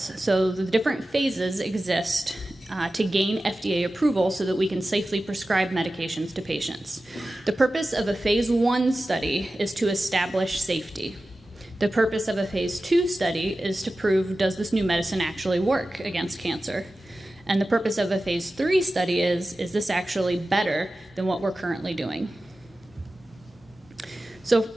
So the different phases exist to gain FDA approval so that we can safely prescribe medications to patients. The purpose of a phase 1 study is to establish safety. The purpose of a phase 2 study is to prove, does this new medicine actually work against cancer? And the purpose of a phase 3 study is this actually better than what we're currently doing? So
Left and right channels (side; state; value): both; normal; correlation 0.95